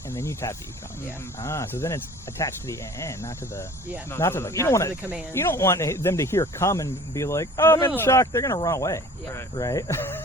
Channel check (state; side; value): normal; both; correlation 0.46